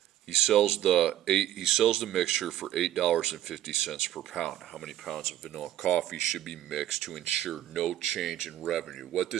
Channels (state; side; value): quieter; left; 12.5 dB